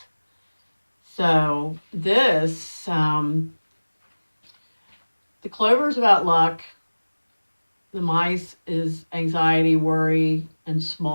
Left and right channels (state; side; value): inverted; both; correlation -1.00